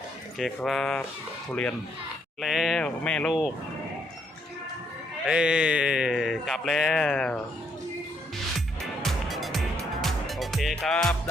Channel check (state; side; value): normal; both; correlation 0.73